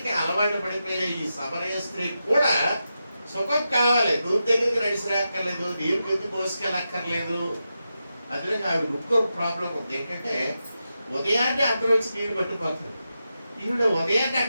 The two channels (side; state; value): both; inverted; correlation -0.89